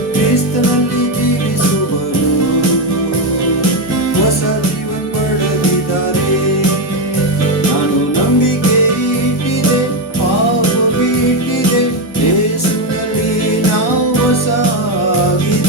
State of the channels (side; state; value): both; normal; correlation 0.09